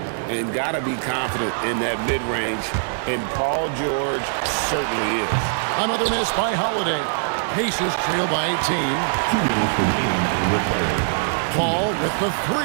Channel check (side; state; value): left; silent; digital silence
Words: And got to be confident in that mid-range, and Paul George certainly is. Another miss by Holiday. Pacers trail by 18. Paul with the